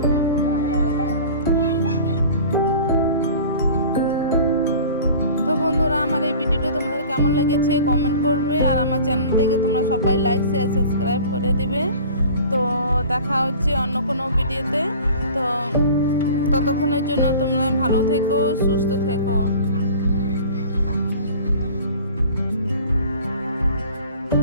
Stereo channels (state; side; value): inverted; both; correlation -0.43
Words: তো বন্ধু বন্ধুরা, আমার এই ভিডিওটা তোমাদের কেমন লেগেছে কমেন্ট করবে, আর আমার চ্যানেলটাকে তোমরা সবাই লাইক শেয়ার সাবস্ক্রাইব করে দিবে। তো দেখা হচ্ছে অন্য কোনো ভিডিওতে। তো ততক্ষণের জন্য তোমরা ভালো থেকো, সুস্থ থেকো।